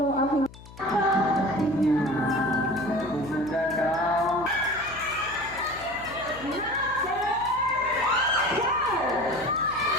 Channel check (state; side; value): noise; left; hum, 18 dB below the sound